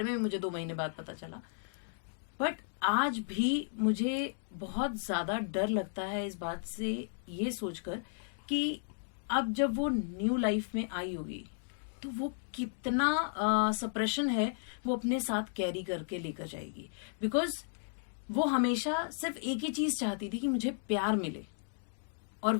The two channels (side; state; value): right; silent; digital silence